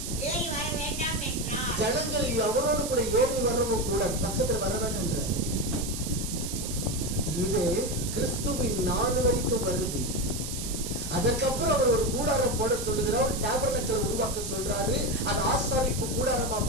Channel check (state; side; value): noise; right; hiss, 7 dB below the sound